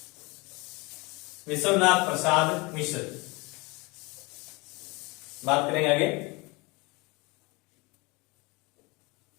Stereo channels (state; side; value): quieter; right; 26.1 dB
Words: विश्वनाथ प्रसाद मिश्र बात करेंगे आगे।